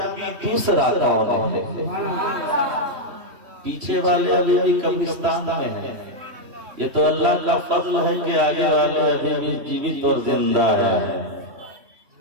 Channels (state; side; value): late; left; 3.1 ms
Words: دوسرا کون ہے؟ پیچھے والے ابھی بھی قبرستان میں ہیں، یہ تو اللہ کا فضل ہے کہ آگے والے ابھی بھی جیوت اور زندہ ہے۔